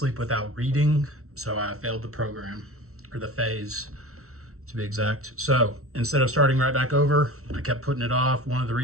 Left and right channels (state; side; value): late; left; 0.63 ms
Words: without reading. So I failed the program, or the phase to be exact. So instead of starting right back over, I kept putting it off. One of the